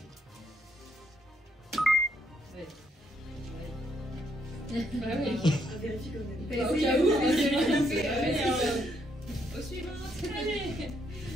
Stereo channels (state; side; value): normal; both; correlation 0.74